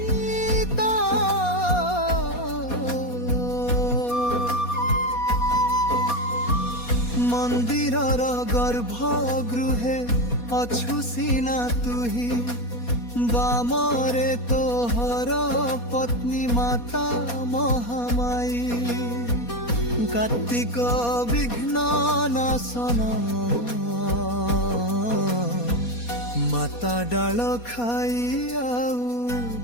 মন্দিরর গর্ভগৃহে অছু সিনা তুহি বামরে তোহর পত্নী মাতা মহামায়ী কার্তিক বিঘ্ন নাশন মাতা ডাল খাই আউ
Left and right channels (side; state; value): right; late; 4.2 ms